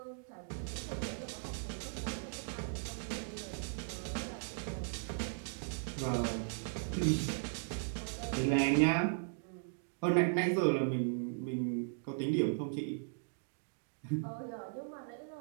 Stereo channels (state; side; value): silent; left; digital silence